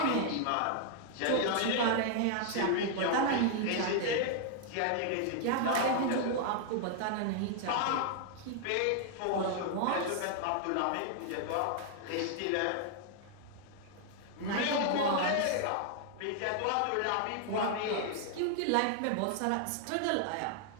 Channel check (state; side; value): different; both; correlation 0.00